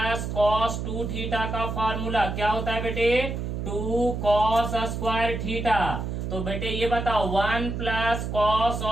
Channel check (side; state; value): right; noise; hum, 4 dB below the sound